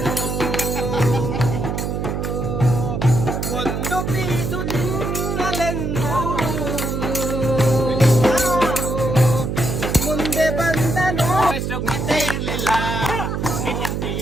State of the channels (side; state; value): right; noise; hum, 2 dB below the sound